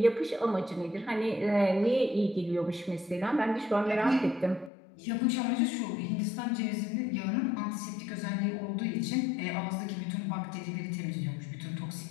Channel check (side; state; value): right; drops out; at 4.7 s